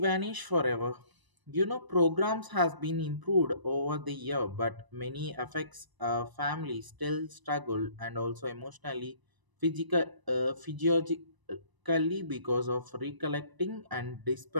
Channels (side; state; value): left; late; 1.0 ms